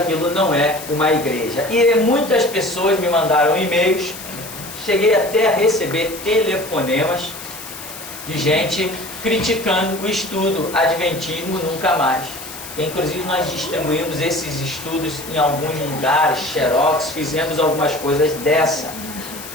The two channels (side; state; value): left; noise; hiss, 12 dB below the sound